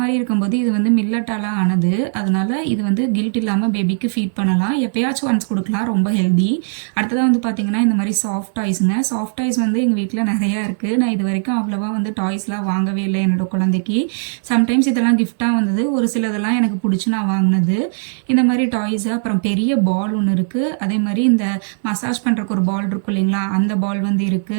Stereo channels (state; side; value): silent; left; digital silence